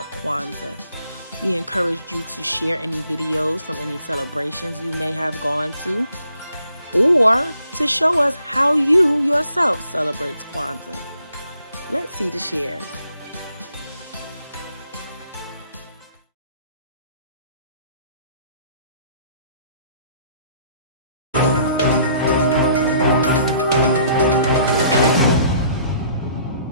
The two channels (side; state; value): both; inverted; correlation -0.63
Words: Kwanzaa. We encouraged you to share any videos from any celebrations you may have gone to, or to show us how you yourself celebrates Kwanzaa. Let's see the shares.